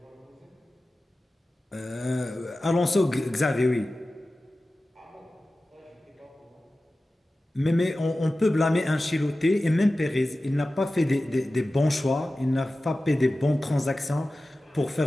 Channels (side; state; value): both; normal; correlation 0.95